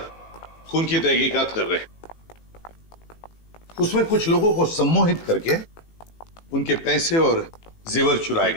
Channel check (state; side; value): late; right; 18 ms